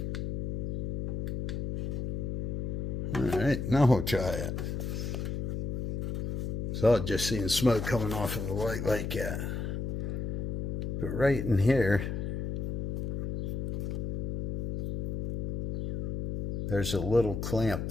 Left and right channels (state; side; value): noise; left; hum, 1 dB below the sound